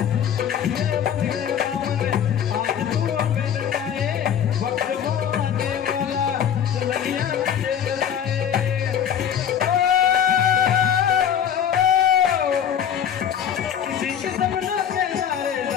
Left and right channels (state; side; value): quieter; right; 8.8 dB